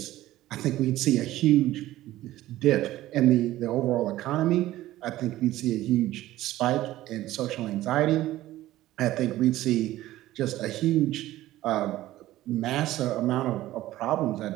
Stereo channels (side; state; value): left; quieter; 15.4 dB